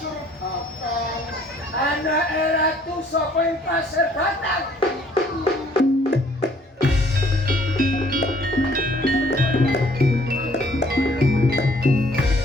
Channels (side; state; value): both; normal; correlation 0.60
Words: batang. Anak ratu sapa ing pasir batang?